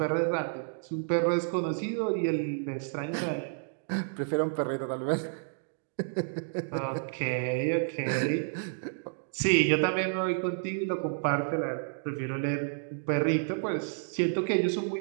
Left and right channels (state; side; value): silent; left; digital silence